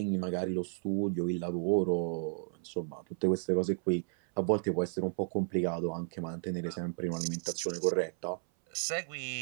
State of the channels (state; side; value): silent; left; 56 dB below the other